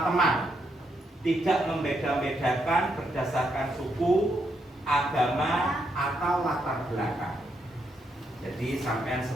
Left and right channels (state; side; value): normal; both; correlation 0.78